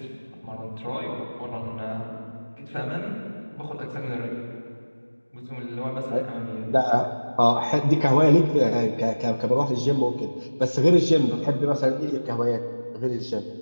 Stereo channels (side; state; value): both; inverted; correlation -1.00